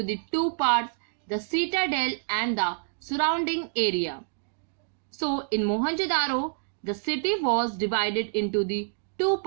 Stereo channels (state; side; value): silent; left; digital silence